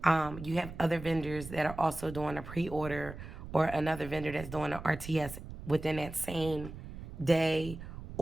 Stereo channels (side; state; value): right; noise; rumble, 12 dB below the sound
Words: you have other vendors that are also doing a pre-order, or another vendor that's doing an RTS within that same day